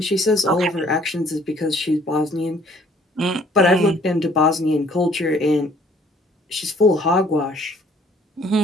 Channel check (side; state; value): both; normal; correlation 0.58